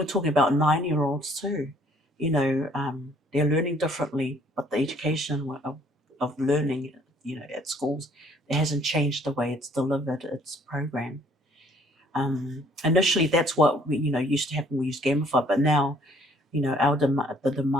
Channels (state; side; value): normal; both; correlation 0.60